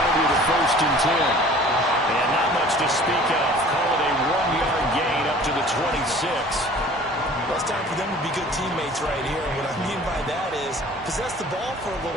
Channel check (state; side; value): normal; both; correlation 0.48